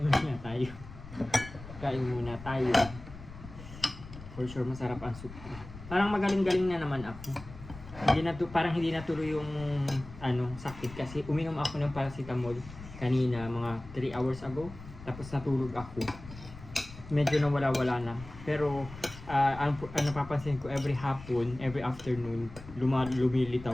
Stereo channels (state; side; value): noise; left; rumble, 15 dB below the sound